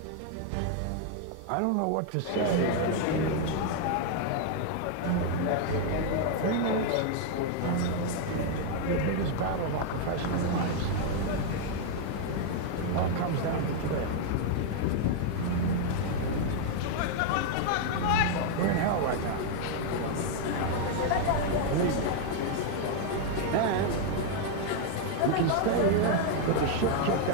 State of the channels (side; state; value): both; different; correlation 0.00